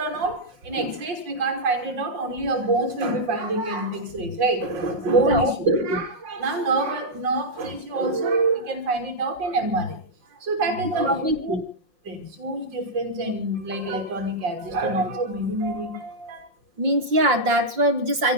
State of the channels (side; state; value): left; late; 5.6 ms